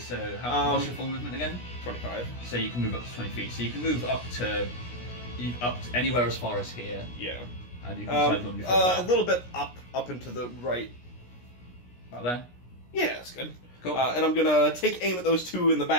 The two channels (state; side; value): late; right; 17 ms